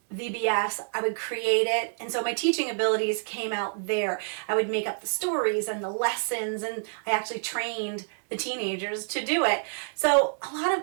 I would create it, and so my teaching abilities came out there. I would make up the stories and the lessons, and I actually trained the teenagers to do it. So a lot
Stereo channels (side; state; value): left; silent; 60 dB below the other